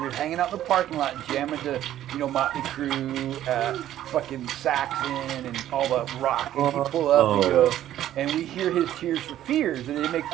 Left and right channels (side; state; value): left; quieter; 12.3 dB